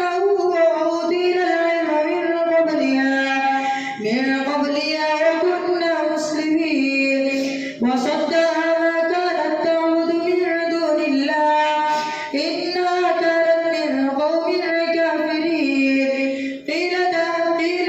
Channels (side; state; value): both; identical; correlation 1.00